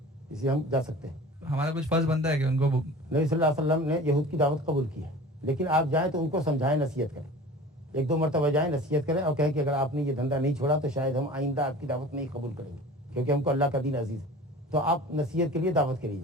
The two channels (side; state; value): both; normal; correlation 0.40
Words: اس لیے ہم جا سکتے ہیں. ہمارا کچھ فرض بنتا ہے کہ ان کو. نبی صلی اللہ علیہ وسلم نے یہود کی دعوت قبول کی ہے، لیکن آپ جائیں تو ان کو سمجھائیں، نصیحت کریں. 1-2 مرتبہ جائیں، نصیحت کریں اور کہیں کہ اگر آپ نے یہ دھندا نہیں چھوڑا تو شاید ہم آئندہ آپ کی دعوت نہیں قبول کریں گے، کیونکہ ہم کو اللہ کا دین عزیز ہے. تو آپ نصیحت کے لیے دعوت کری